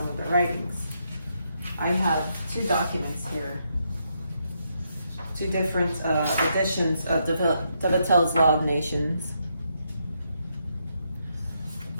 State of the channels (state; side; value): inverted; both; correlation -0.79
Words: of their writings. I have two documents here, two different editions of DefenSe's Law of Nations.